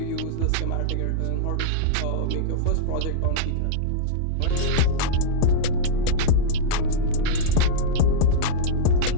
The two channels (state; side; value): different; both; correlation -0.02